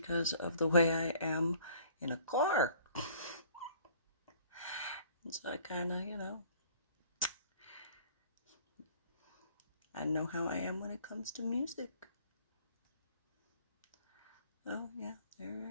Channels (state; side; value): inverted; both; correlation -0.54